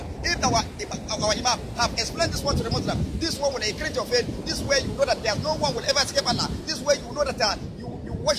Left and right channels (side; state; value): both; identical; correlation 1.00